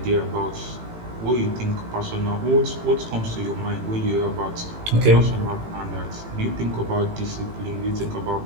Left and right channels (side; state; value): left; late; 18 ms